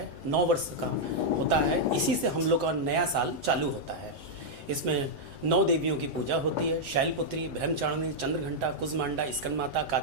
9 वर्ष का होता है, इसी से हम लोग का नया साल चालू होता है। इसमें 9 देवियों की पूजा होती है, शैलपुत्री, ब्रह्मचारिणी, चंद्रघंटा, कुजमांडा, स्कंदमाता,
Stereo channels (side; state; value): left; late; 4.1 ms